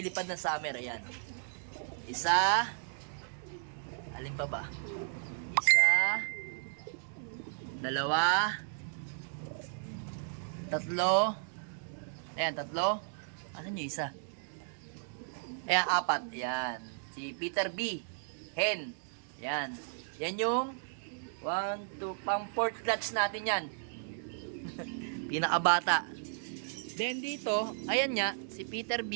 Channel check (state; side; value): silent; left; digital silence